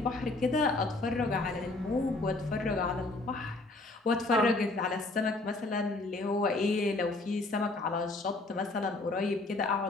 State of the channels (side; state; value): right; quieter; 3.0 dB